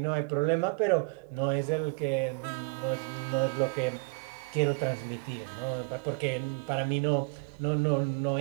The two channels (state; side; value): quieter; left; 32.2 dB